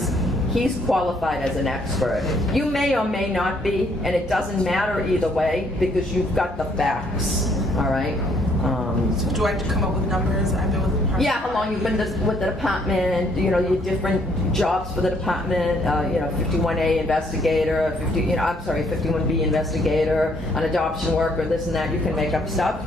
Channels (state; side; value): normal; both; correlation 0.67